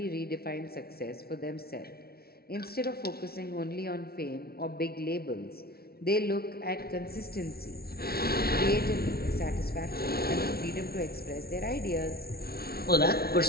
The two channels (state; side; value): late; right; 0.44 ms